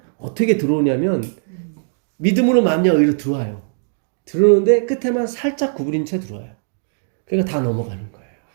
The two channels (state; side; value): silent; left; digital silence